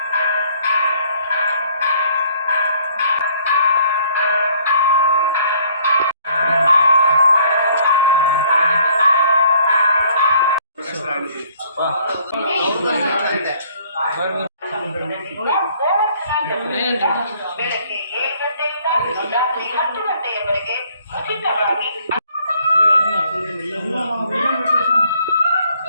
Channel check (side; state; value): both; inverted; correlation -0.61